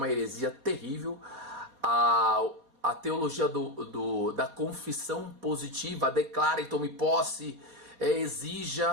heresia terrível, a teologia da confissão positiva, declara e tome posse,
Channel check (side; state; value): left; late; 4.2 ms